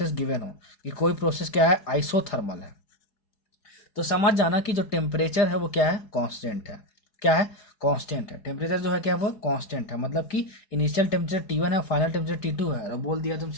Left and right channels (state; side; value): late; right; 4.7 ms